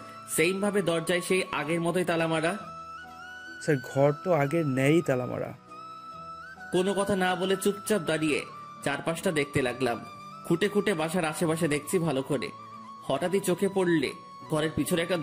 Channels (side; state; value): both; identical; correlation 1.00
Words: সেইম ভাবে দরজায় সেই আগের মতোই তালা মারা। স্যার ঘর তো আগের ন্যায়ই তালা মারা। কোনো কথা না বলে চুপচাপ দাঁড়িয়ে চারপাশটা দেখতে লাগলাম। খুঁটে খুঁটে বাসার আশেপাশে দেখছি ভালো করে। হঠাৎই চোখে পড়লে ঘরের পিছনে একটা